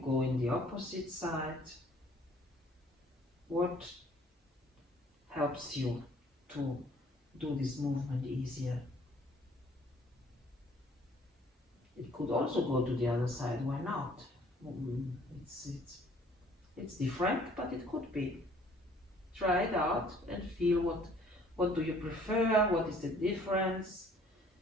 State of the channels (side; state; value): both; normal; correlation 0.58